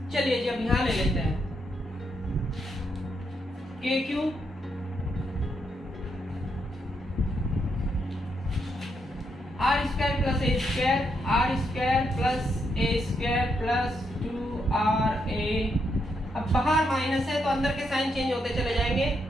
चलिए जी अब यहाँ ले लेते हैं K Q R square plus A square, R square plus A square plus 2ra। अब बाहर माइनस है तो अंदर के साइन चेंज होते चले जाएंगे,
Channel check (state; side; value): normal; both; correlation 0.79